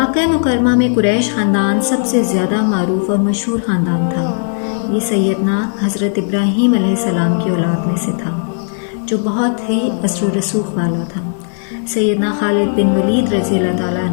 مکرمہ میں قریش خاندان سب سے زیادہ معروف اور مشہور خاندان تھا۔ یہ سیدنا حضرت ابراہیم علیہ السلام کی اولاد میں سے تھا جو بہت ہی اثر و رسوخ والا تھا۔ سیدنا خالد بن ولید رضی اللہ تعالیٰ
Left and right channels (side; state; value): right; silent; 69 dB below the other